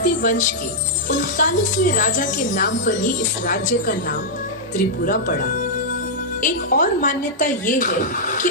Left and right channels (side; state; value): both; normal; correlation -0.07